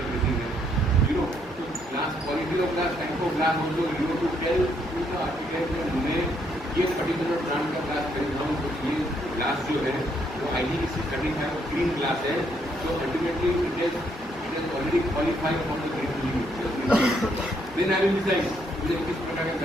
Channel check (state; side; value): normal; both; correlation 0.72